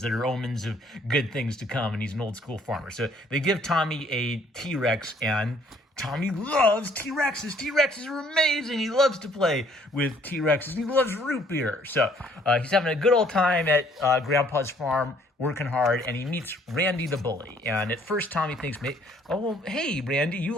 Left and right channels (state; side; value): normal; both; correlation 0.62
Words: that are omens of good things to come, and he's an old school farmer. So they give Tommy a T-Rex, and Tommy loves T-Rexes. T-Rexes are amazing. He loves to play with T-Rexes. He loves root beer. So he's having a good old time at Grandpa's farm working hard, and he meets Randy the bully. And at first, Tommy thinks, oh, well, hey, Randy, you